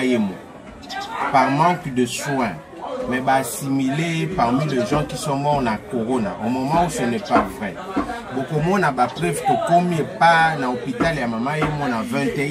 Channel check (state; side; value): identical; both; correlation 1.00